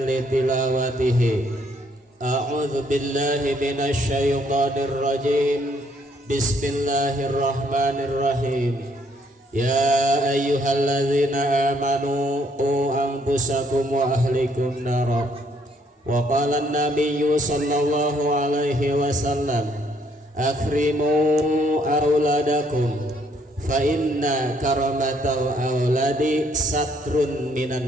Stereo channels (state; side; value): normal; both; correlation 0.68